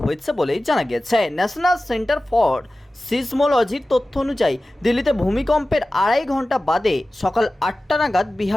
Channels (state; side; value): normal; both; correlation 0.96